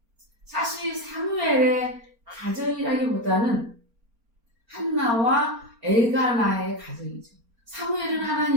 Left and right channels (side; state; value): left; late; 4.4 ms